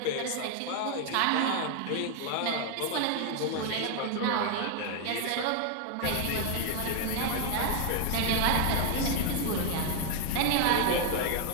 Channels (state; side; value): different; both; correlation 0.01